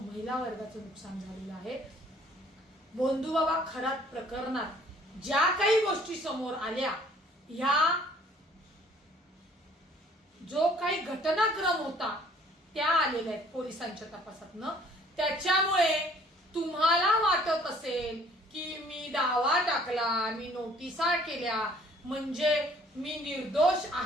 महिला वर्गाचं नुकसान झालेलं आहे. बंधुबाबा खरात प्रकरणात ज्या काही गोष्टी समोर आल्या, ह्या जो काही घटनाक्रम होता त्या आलेल्या आहेत पोलिसांच्या तपासातनं. त्याच्यामुळे तुम्हाला वाटत असेल की मी दावा टाकला, मी नोटिसा केल्या म्हणजे मी निर्दोष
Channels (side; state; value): both; normal; correlation 0.58